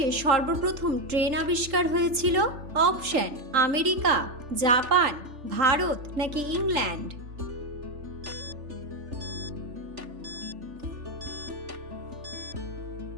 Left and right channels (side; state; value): left; late; 3.7 ms